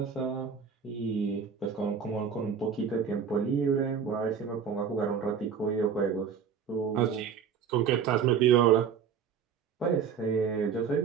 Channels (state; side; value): quieter; left; 6.9 dB